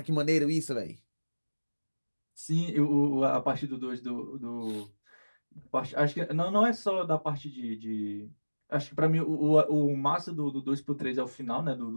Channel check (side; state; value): both; inverted; correlation -1.00